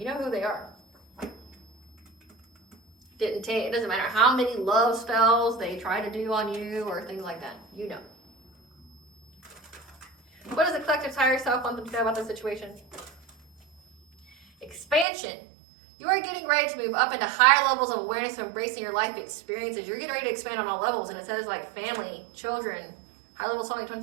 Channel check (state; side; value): drops out; left; at 15.1 s